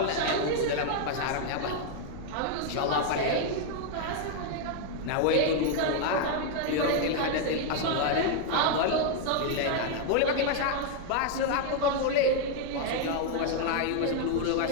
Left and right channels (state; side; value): different; both; correlation 0.00